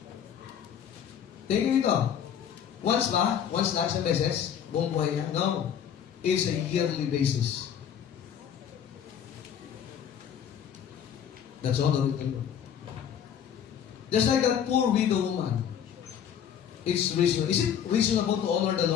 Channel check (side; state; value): right; quieter; 8.8 dB